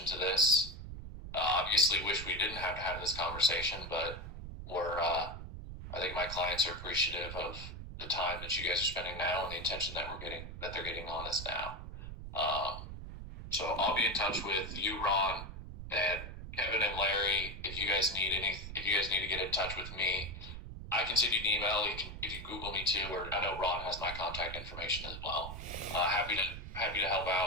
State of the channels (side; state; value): right; noise; rumble, 9 dB below the sound